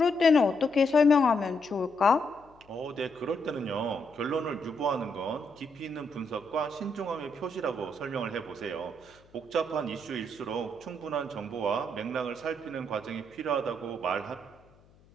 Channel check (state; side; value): noise; left; hum, 29 dB below the sound